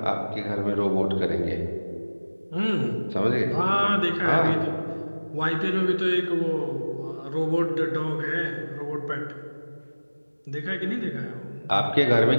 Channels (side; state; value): both; inverted; correlation -1.00